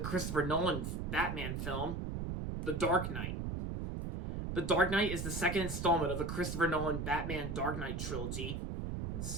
Nolan Batman film, The Dark Knight. The Dark Knight is the second installment of the Christopher Nolan Batman Dark Knight trilogy. And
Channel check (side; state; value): right; noise; rumble, 4 dB below the sound